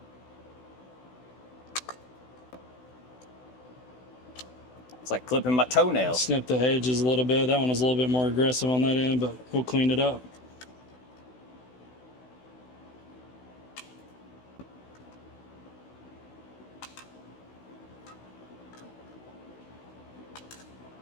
It's like clipping my toenails. Snip the edges a little bit. That one was a little bit more aggressive on that end, but we'll clean it up.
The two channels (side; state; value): right; late; 16 ms